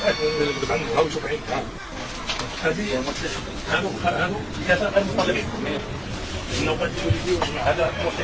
هاو شوف عين هذه هذو ثلاثة غير مطلقين. إنه قد يجوا هذا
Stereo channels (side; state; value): both; identical; correlation 1.00